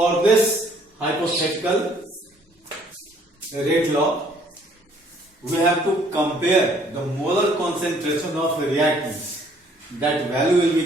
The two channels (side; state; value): both; normal; correlation 0.61